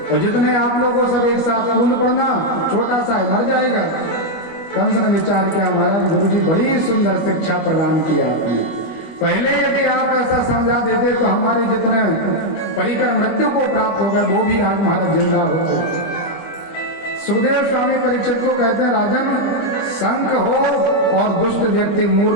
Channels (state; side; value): late; right; 25 ms